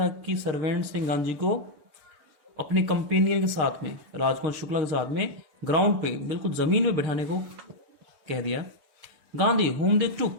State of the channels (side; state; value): left; late; 6.8 ms